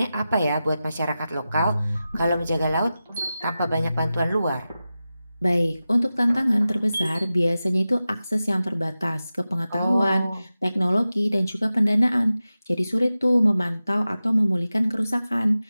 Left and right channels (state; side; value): inverted; both; correlation -0.94